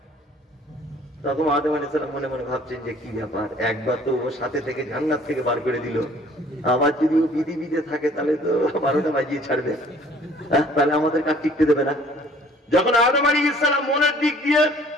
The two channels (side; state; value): both; normal; correlation 0.55